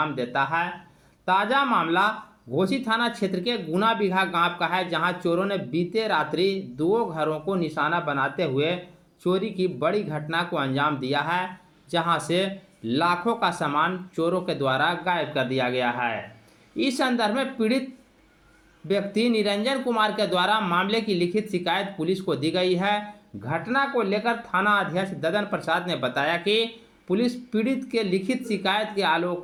देता है। ताज़ा मामला घोसी थाना क्षेत्र के गुना बिगहा गांव का है, जहां चोरों ने बीते रात्रि दो घरों को निशाना बनाते हुए चोरी की बड़ी घटना को अंजाम दिया है, जहां से लाखों का सामान चोरों के द्वारा गायब कर दिया गया है। इस संदर्भ में पीड़ित व्यक्ति निरंजन कुमार के द्वारा मामले की लिखित शिकायत पुलिस को दी गई है। घटना को लेकर थाना अध्यक्ष ददन प्रसाद ने बताया कि पुलिस पीड़ित के लिखित शिकायत के आलोक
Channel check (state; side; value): identical; both; correlation 1.00